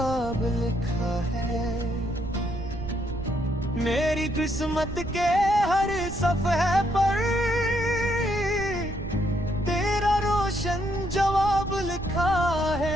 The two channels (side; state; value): right; noise; rumble, 9 dB below the sound